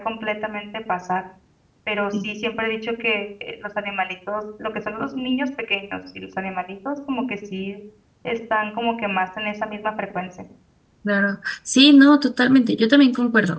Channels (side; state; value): both; identical; correlation 1.00